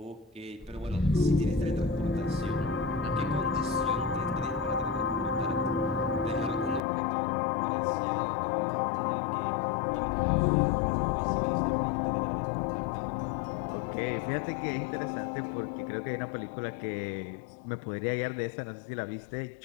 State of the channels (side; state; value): right; drops out; at 6.8 s